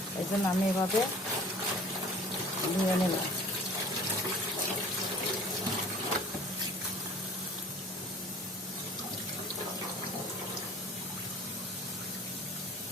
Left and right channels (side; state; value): both; normal; correlation 0.47